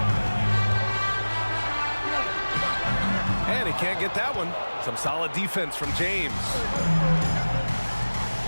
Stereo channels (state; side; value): inverted; both; correlation -1.00